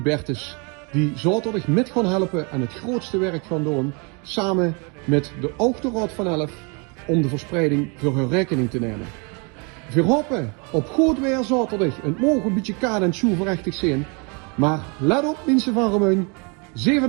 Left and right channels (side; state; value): left; quieter; 33.1 dB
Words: die zaterdag met gaan helpen en het grootste werk gaan doen, samen met de Autoraad van Elf, om de verspreiding voor hun rekening te nemen. We hopen op goed weer zaterdag. Het mogen een beetje kaad en schoenverrechtig zijn. Maar let op mensen van Remeun.